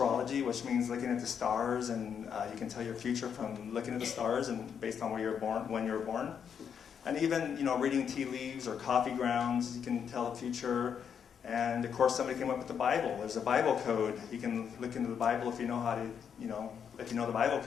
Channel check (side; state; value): right; quieter; 7.6 dB